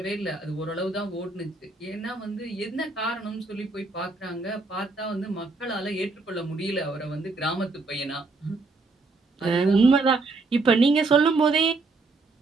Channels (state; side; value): quieter; left; 3.7 dB